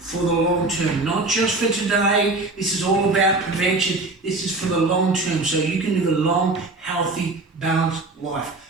the long term. Not just for today. This is all about prevention. This is for the long term, so you can live a long, healthy, balanced life.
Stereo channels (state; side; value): quieter; left; 3.2 dB